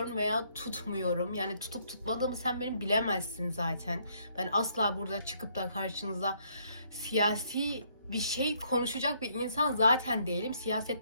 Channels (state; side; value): inverted; both; correlation -0.69